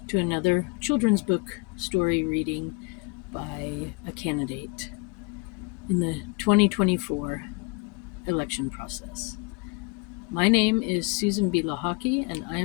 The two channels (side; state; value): right; quieter; 29.6 dB